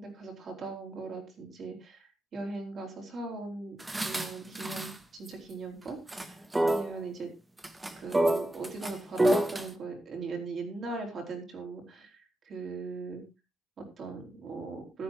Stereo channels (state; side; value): normal; both; correlation 0.88